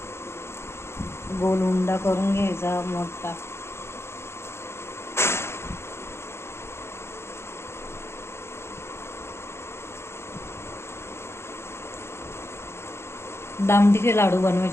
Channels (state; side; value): late; right; 0.12 ms